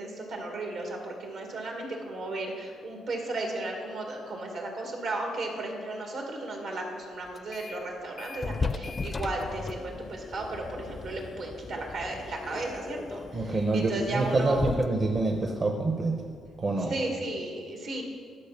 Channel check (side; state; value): both; normal; correlation 0.82